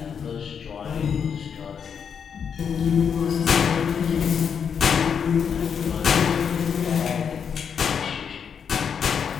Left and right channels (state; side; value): quieter; right; 7.1 dB